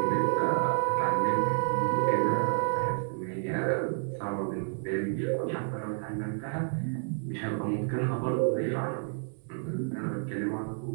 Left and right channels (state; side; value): silent; left; digital silence